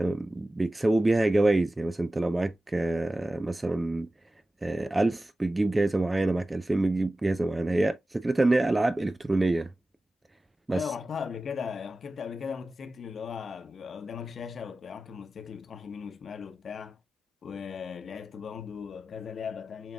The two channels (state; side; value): normal; both; correlation 0.95